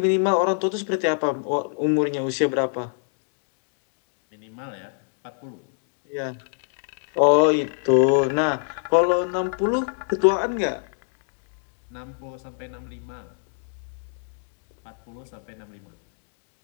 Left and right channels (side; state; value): right; silent; digital silence